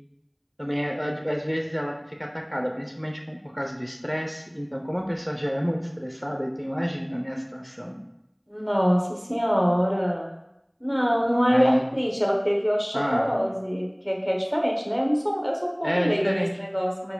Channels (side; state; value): both; identical; correlation 1.00